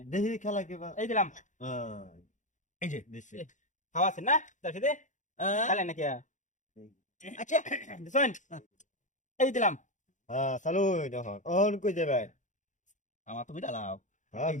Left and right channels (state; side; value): late; right; 0.36 ms